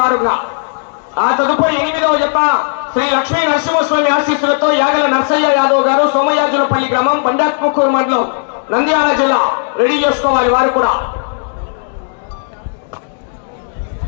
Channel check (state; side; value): silent; right; digital silence